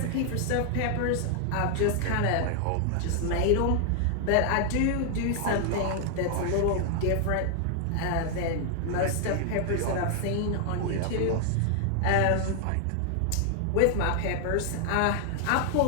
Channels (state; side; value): different; both; correlation 0.00